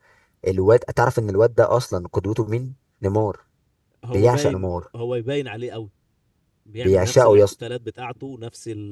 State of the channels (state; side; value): identical; both; correlation 1.00